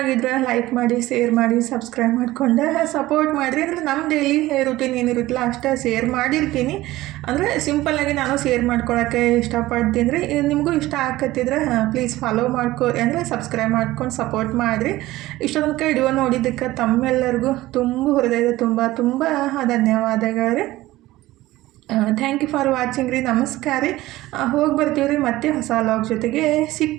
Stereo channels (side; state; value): left; quieter; 17.2 dB